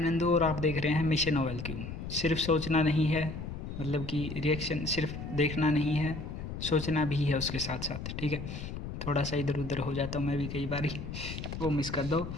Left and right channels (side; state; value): left; noise; rumble, 7 dB below the sound